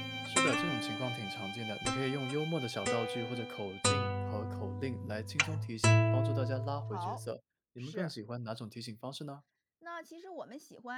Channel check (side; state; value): both; identical; correlation 1.00